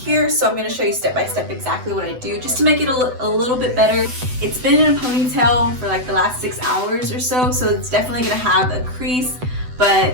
so I'm going to show you step by step exactly what I do just to make it a little bit better. It's been in a ponytail for like the last 6 hours or so, so it's definitely going to have a crease,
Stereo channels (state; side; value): late; left; 7.9 ms